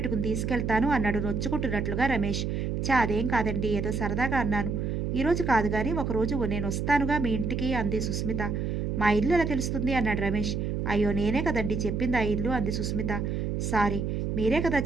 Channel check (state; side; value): noise; right; hum, 1 dB below the sound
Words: తీసుకెళ్తాను అన్నాడు నొచ్చుకుంటున్నట్లుగా రమేష్. అదేం కాదండి, ఏదో సరదాగా అన్నాను. ఈరోజు కాదు కానీ ఒకరోజు నేను వస్తానుగా మీ ఇంటికి అంది సుస్మిత. మా ఇల్లు ఎలా తెలుస్తుంది అన్నాడు రమేష్. అయ్యో నేనే కదండి చెప్పింది ఆ ఇల్లు అంది సుస్మిత. సారీ, మీరే కదా